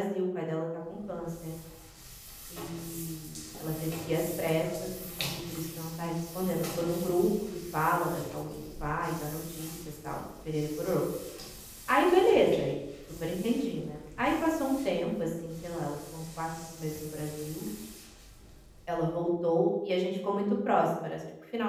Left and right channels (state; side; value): identical; both; correlation 1.00